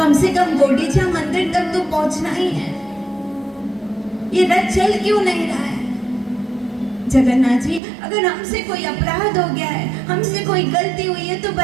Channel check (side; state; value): left; drops out; at 7.8 s